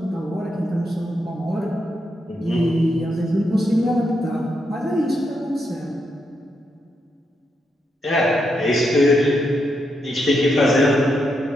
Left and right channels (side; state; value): both; normal; correlation 0.82